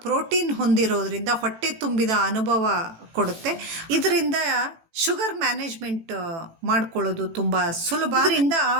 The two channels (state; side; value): late; left; 18 ms